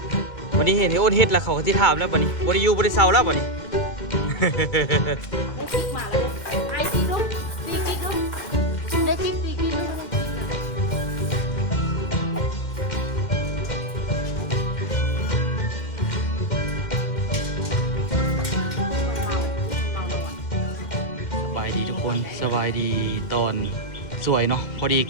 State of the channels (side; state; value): right; late; 1.8 ms